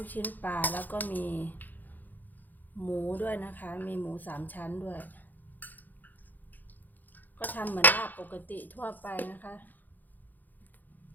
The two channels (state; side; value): late; right; 0.085 ms